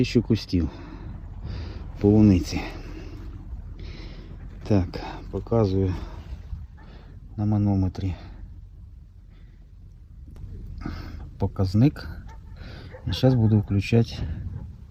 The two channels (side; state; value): both; identical; correlation 1.00